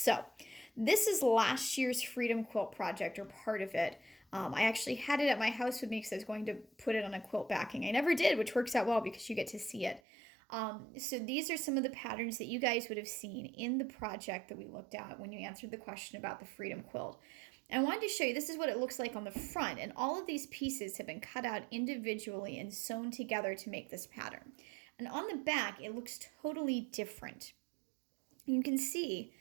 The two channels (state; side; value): drops out; left; at 10.0 s